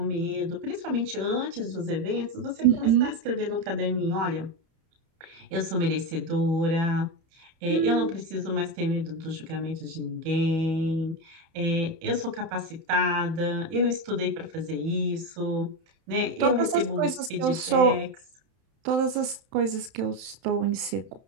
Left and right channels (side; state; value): left; late; 31 ms